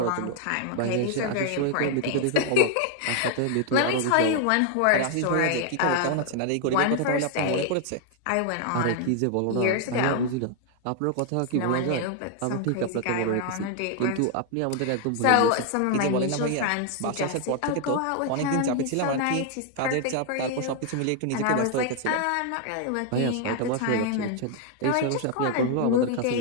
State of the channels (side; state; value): both; different; correlation 0.00